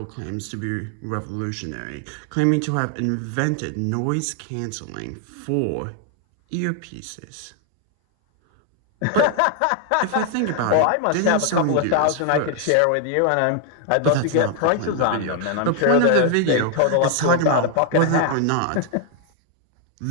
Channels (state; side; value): different; both; correlation 0.00